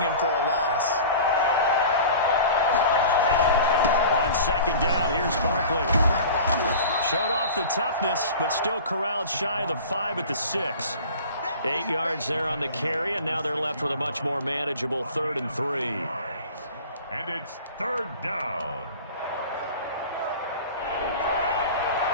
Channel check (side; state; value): both; inverted; correlation -0.40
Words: him for a loss. On 2nd down, here's Barkley. Showed off the toughness, but still corralled shy of the 5 at the 6. 8 yards there on the carry, and now they're left with a much more manageable 3rd and 3. And it's 3rd down.